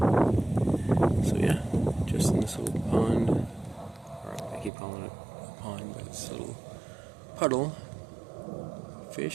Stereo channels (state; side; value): drops out; left; at 4.7 s